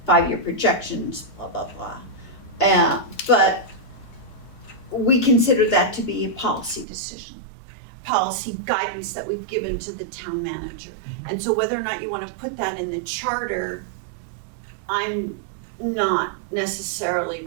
5-year projections, blah, blah, blah. But we consider that to be a policy decision, policy guidance that we've given to the town manager. And so whether or not you want to put that in the charter, I'm not necessarily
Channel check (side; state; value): left; drops out; at 6.9 s